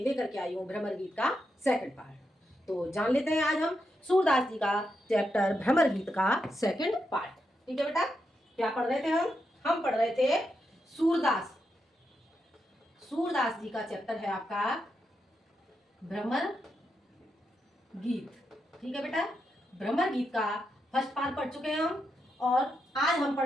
लेकर के आई हूँ भ्रमर गीत का सेकंड पार्ट। तो जान लेते हैं आज हम सूरदास जी का चैप्टर भ्रमर गीत का सेकंड पार्ट। ठीक है बेटा, क्या पढ़ रहे थे हम पढ़ रहे थे सूरदास सूरदास जी का चैप्टर है आपका भ्रमर गीत। ठीक है बेटा, भ्रमर गीत का फर्स्ट पार्ट पढ़ चुके हैं हम और आज हम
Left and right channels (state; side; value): normal; both; correlation 0.84